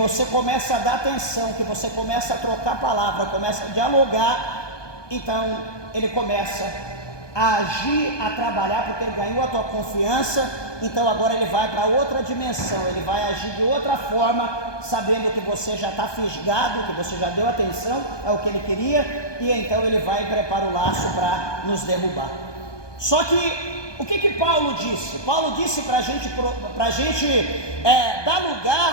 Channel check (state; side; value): late; right; 1.2 ms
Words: começa a dar atenção, que você começa a trocar palavra, começa a dialogar, então ele começa a agir, a trabalhar, porque ele ganhou a tua confiança. Então agora ele vai para outra dimensão, ele vai agir de outra forma, sabendo que você já está fisgado, que você já deu atenção ao que ele queria, e então ele vai e prepara o laço para nos derrubar. Só que o que Paulo disse? Paulo disse para a gente dar